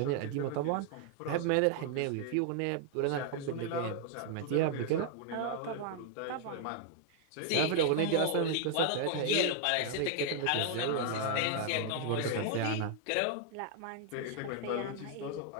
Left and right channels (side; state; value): both; different; correlation 0.00